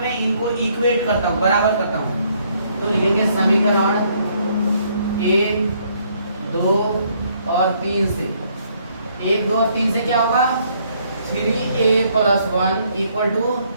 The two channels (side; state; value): both; inverted; correlation -0.68